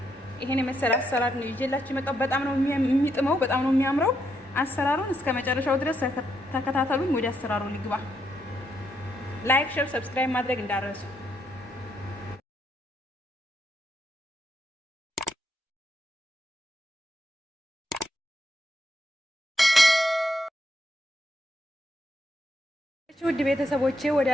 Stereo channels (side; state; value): both; normal; correlation 0.78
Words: የመሰለ አሰራር ነው ይዤላችሁ የመጣሁት። በጣም ነው የሚጥመው፣ በጣም ነው የሚያምረው። አሰራሩን እስከ መጨረሻው ድረስ ተከታተሉኝ። ወደ አሰራሩ ልግባ። ላይክ፣ ሼር፣ ሰብስክራይብ ማድረግ እንዳትረሱ። ውድ ቤተሰቦቼ ወደ